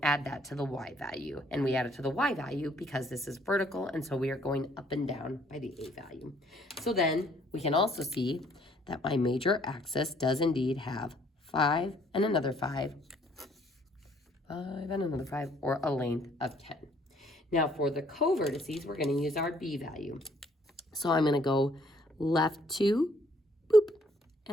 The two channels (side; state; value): both; normal; correlation 0.63